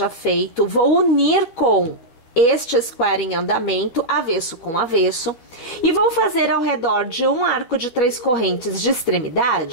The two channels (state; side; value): late; right; 12 ms